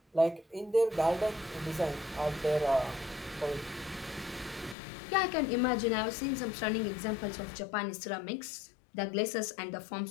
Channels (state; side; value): drops out; right; at 4.8 s